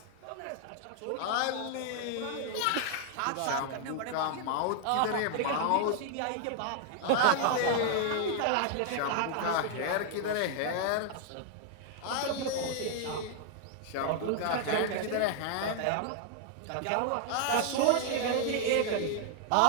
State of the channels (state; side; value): different; both; correlation 0.00